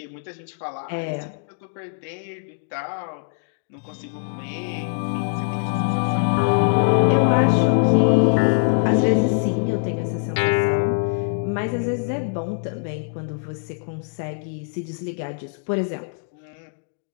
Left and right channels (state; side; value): silent; right; 63 dB below the other